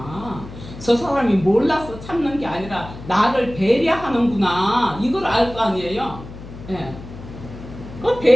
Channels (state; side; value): noise; left; hum, 14 dB below the sound